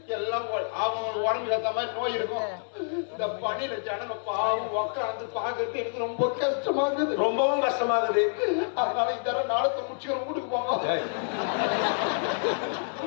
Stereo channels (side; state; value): right; silent; digital silence